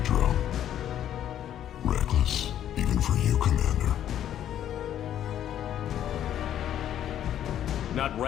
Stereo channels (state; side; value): quieter; right; 10.8 dB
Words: drone. Reckless, even for you, Commander. Not